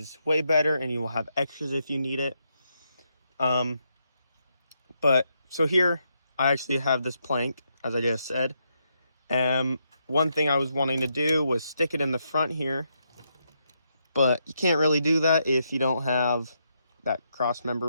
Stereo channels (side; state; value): both; inverted; correlation -0.80